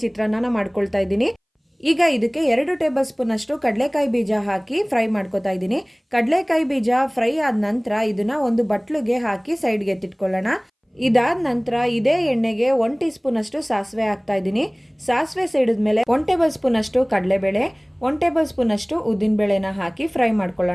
ಚಿತ್ರಾನ್ನ ಮಾಡ್ಕೊಳ್ತಾ ಇದ್ದೀನಿ. ಈಗ ಇದಕ್ಕೆ 2 ಟೇಬಲ್ ಸ್ಪೂನಷ್ಟು ಕಡಲೆಕಾಯಿ ಬೀಜ ಹಾಕಿ ಫ್ರೈ ಮಾಡ್ಕೊತಾ ಇದ್ದೀನಿ. ಕಡಲೆಕಾಯಿ ಬೀಜ ಫ್ರೈ ಆದ ನಂತರ ಇದನ್ನು ಒಂದು ಬಟ್ಲಿಗೆ ಹಾಕಿ ಸೈಡ್ಗೆ ಎತ್ತಿಟ್ಕೊಳ್ಳೋಣ. ಇದಾದ ನಂತರ ಇದೇ ಎಣ್ಣೆಗೆ 1 ಟೀ ಸ್ಪೂನಷ್ಟು ಸಾಸಿವೆ ಹಾಕ್ತಾ ಇದ್ದೀನಿ. ಸಾಸಿವೆ ಸಿಡಿದ ಮೇಲೆ 1 ಟೇಬಲ್ ಸ್ಪೂನಷ್ಟು ಕಡಲೆಬೇಳೆ, 1 ಟೇಬಲ್ ಸ್ಪೂನಷ್ಟು ಉದ್ದಿನಬೇಳೆನ ಹಾಕಿ ಫ್ರೈ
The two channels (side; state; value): both; identical; correlation 1.00